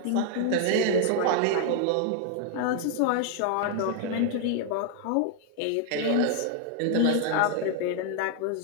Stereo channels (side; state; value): both; different; correlation 0.00